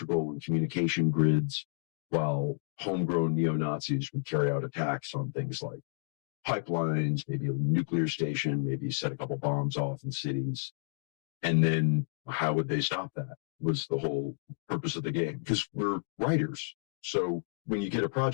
and communication grids, while homegrown neo-Nazis would carry out attacks on things like pipelines, maybe a nuclear station, maybe set a couple bombs off in cities. And then how would they stop that was the whole purpose of the game, because we're writers. So when you get a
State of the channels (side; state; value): right; silent; digital silence